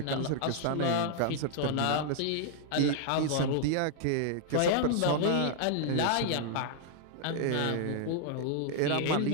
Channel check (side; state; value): both; different; correlation 0.00